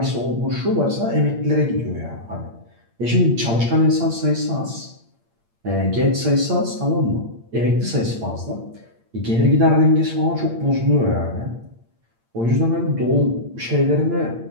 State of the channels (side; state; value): left; late; 8.7 ms